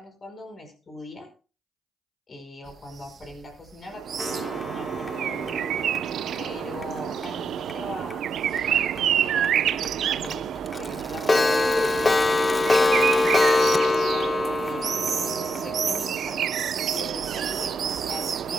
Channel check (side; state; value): both; normal; correlation 0.81